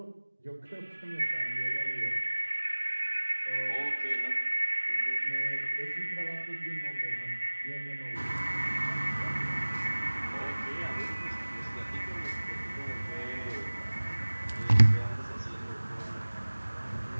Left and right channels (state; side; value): inverted; both; correlation -1.00